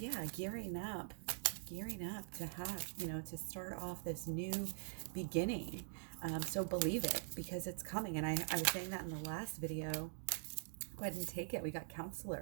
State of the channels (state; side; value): silent; left; digital silence